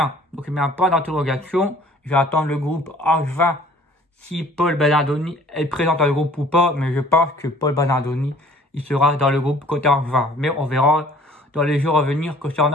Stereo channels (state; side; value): normal; both; correlation 0.53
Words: Donc il met un point d'interrogation. Je vais attendre le groupe Angevin si Paul Bernardoni est présent dans le groupe ou pas. Mais je pense que Paul Bernardoni, il sera dans le groupe côté Angevin. Mais on verra dans les jours à venir